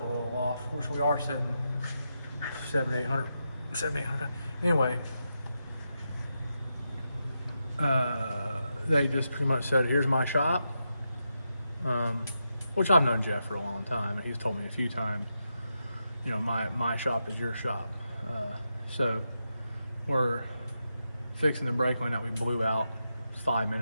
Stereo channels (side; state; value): both; inverted; correlation -0.86